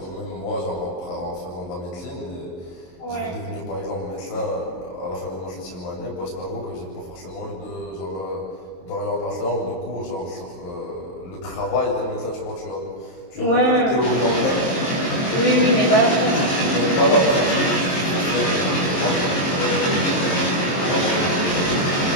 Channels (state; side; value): late; right; 22 ms